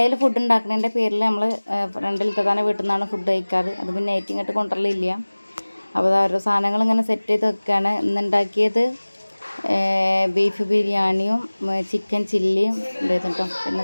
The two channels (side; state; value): both; inverted; correlation -1.00